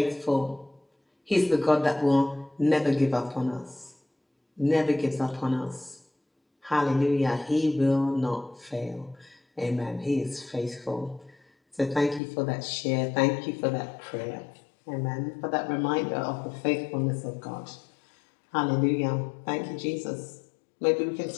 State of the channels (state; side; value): drops out; right; at 12.2 s